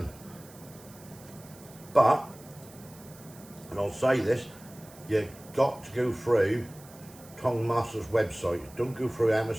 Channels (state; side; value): noise; right; hiss, 21 dB below the sound